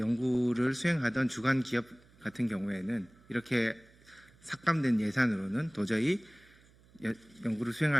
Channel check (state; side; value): noise; right; hum, 28 dB below the sound